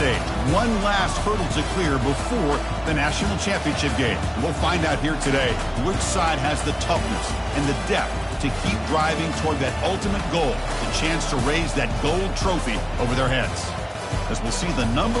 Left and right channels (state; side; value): identical; both; correlation 1.00